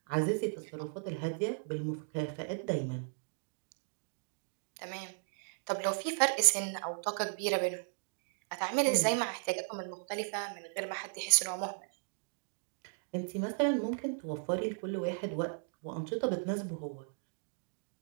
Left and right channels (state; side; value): silent; left; digital silence